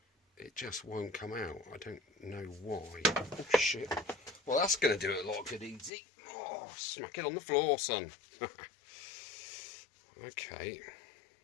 It just won't come out. I don't know why. Oh shit. Well, that's going to do it a lot of good easy. Oh, smack it on the floor, son. Okay.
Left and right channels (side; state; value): right; drops out; at 5.9 s